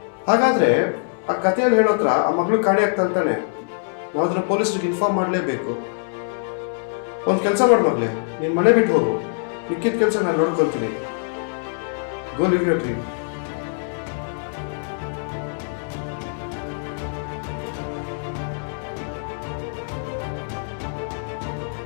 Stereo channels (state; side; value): silent; right; digital silence